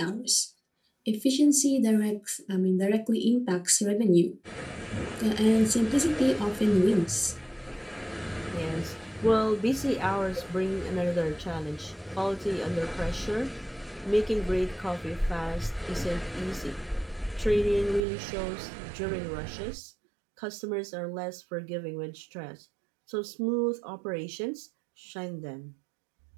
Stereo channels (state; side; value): drops out; left; at 18.1 s